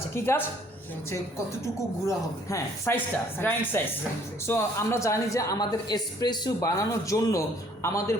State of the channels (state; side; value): normal; both; correlation 0.60